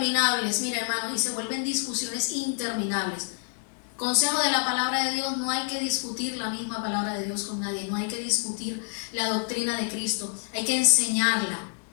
mira hermano, y se vuelven discusiones interminables. Consejo de la palabra de Dios: no hay que discutir la misma palabra de Dios con nadie, no hay que discutir la doctrina de Cristo, hay que enseñarla,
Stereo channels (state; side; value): silent; right; 56 dB below the other